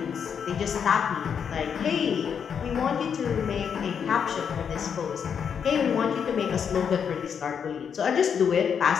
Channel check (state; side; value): quieter; right; 7.3 dB